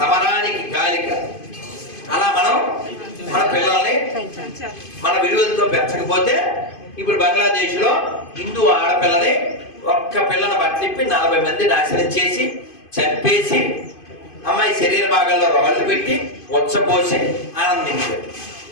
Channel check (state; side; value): late; right; 2.5 ms